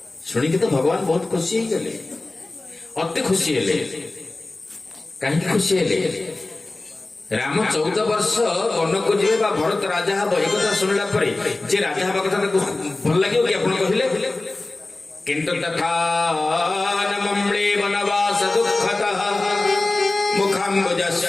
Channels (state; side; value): quieter; right; 3.1 dB